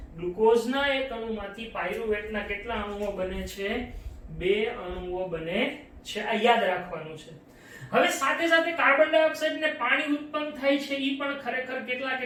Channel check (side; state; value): both; identical; correlation 1.00